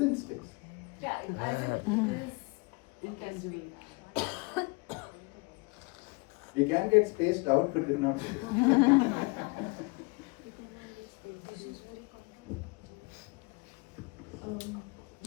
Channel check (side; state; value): right; quieter; 28.7 dB